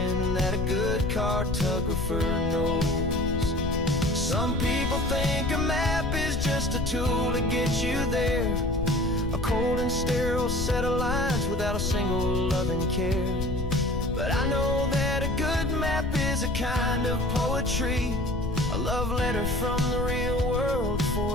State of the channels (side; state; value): left; noise; rumble, 4 dB below the sound